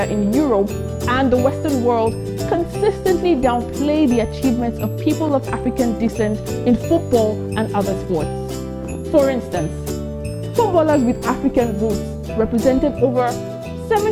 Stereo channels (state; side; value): identical; both; correlation 1.00